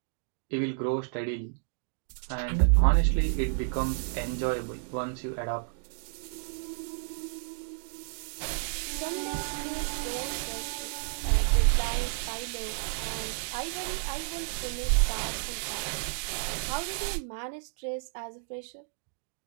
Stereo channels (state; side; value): silent; left; digital silence